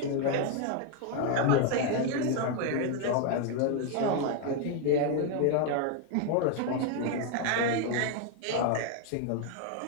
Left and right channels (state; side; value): different; both; correlation 0.01